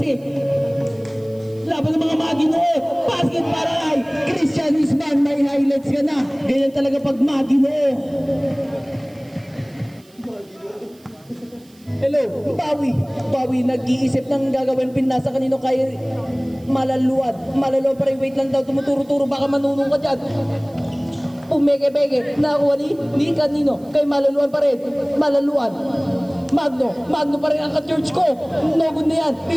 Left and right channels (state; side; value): noise; right; hiss, 29 dB below the sound